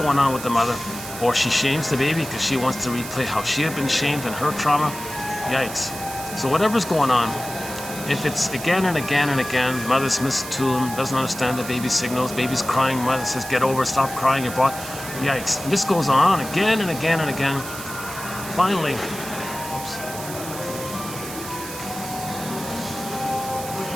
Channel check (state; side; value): noise; right; hiss, 10 dB below the sound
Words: on with the mother. Or she shames the baby because she wants to replay how she had been shamed in her trauma. Yikes. So whatever's going on, if it's again and again and again, mother's misattuned, doesn't understand the baby's signals, baby's crying, mother says, get over it, stop crying, you're brought. Yikes. And this goes on again and again and again. Finally, oops.